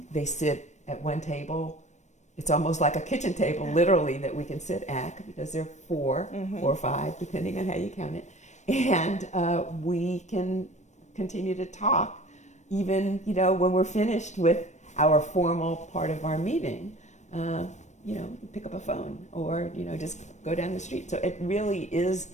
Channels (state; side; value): late; right; 0.34 ms